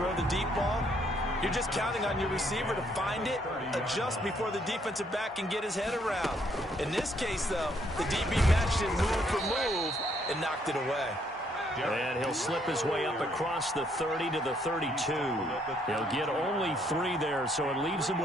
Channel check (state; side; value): normal; both; correlation 0.69